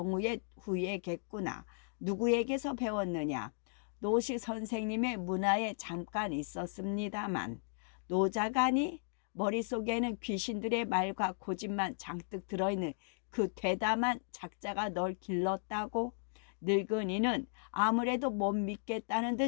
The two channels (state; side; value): silent; right; digital silence